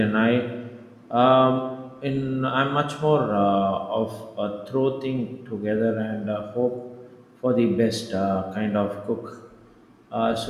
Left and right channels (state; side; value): identical; both; correlation 1.00